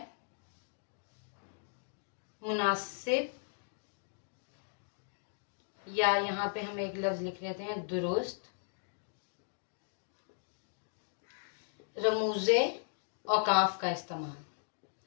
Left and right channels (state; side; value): silent; right; digital silence